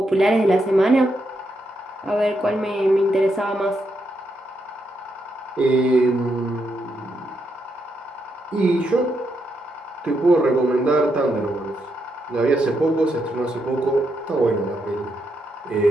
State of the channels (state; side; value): normal; both; correlation 0.81